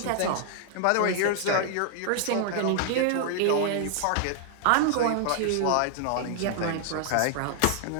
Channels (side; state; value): both; different; correlation 0.00